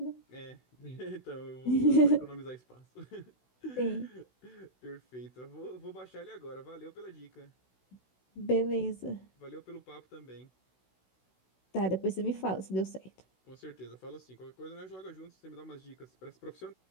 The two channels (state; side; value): late; right; 16 ms